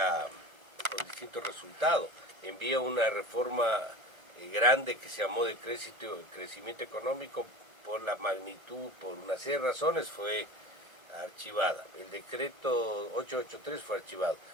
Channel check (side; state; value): left; late; 1.3 ms